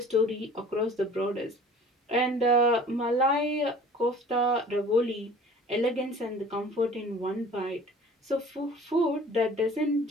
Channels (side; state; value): both; normal; correlation 0.47